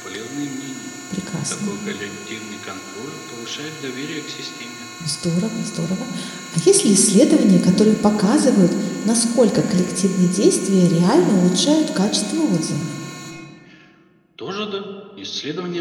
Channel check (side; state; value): both; identical; correlation 1.00